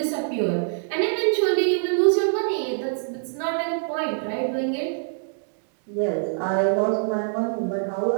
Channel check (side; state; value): left; silent; digital silence